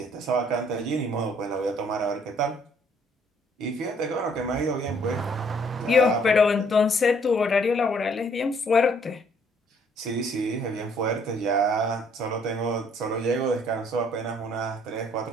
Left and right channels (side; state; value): both; normal; correlation 0.63